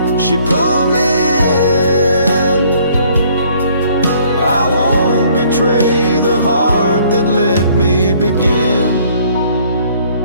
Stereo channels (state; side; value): inverted; both; correlation -0.61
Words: she pulled me in. I won't betray the heart that let me begin.